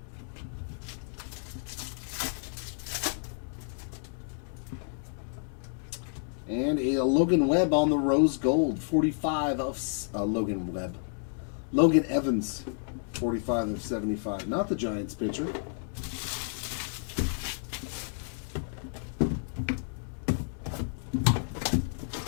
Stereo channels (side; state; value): right; silent; digital silence